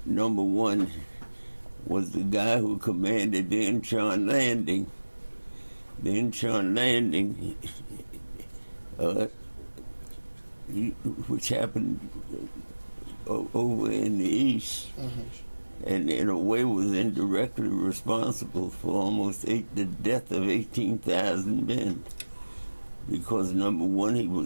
number one, was the guy who commanded the Incheon landing. The Incheon landing, which happened over in the east, and in a way was indirectly responsible for almost the death of 18,000 men. Because number one, he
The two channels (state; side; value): inverted; both; correlation -1.00